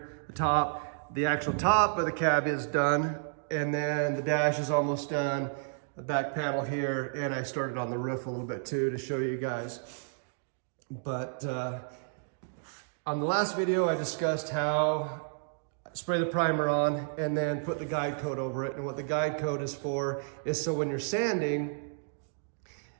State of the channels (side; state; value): left; silent; digital silence